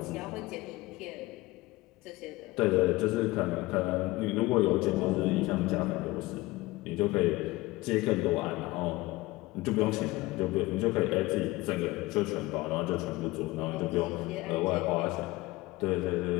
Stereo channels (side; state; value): right; quieter; 20.1 dB